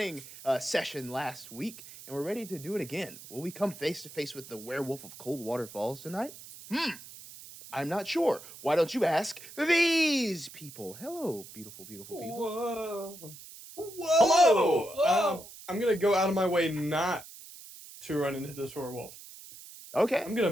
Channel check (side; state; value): right; noise; hiss, 16 dB below the sound